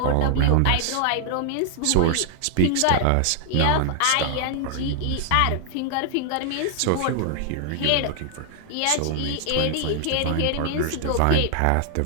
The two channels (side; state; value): both; different; correlation 0.00